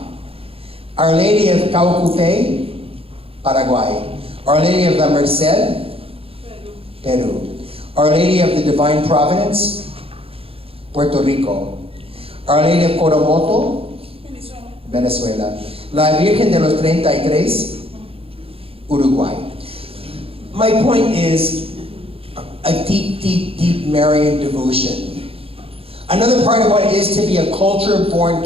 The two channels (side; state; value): left; late; 0.27 ms